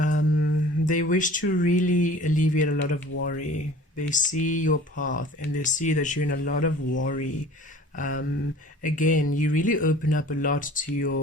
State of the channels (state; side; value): normal; both; correlation 0.46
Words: they wish to really alleviate a lot of worry. They see your path and they see that you're in a lot of worry. Again, you really open up a lot to